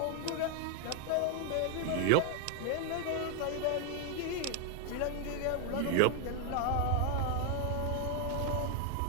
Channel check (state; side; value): different; both; correlation 0.00